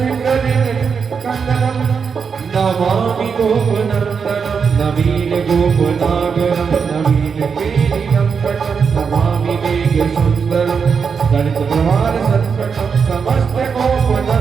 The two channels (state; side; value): quieter; left; 6.1 dB